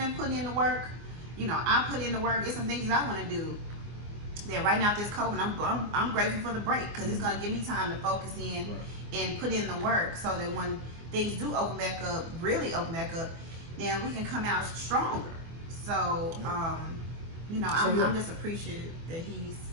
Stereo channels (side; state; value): left; late; 24 ms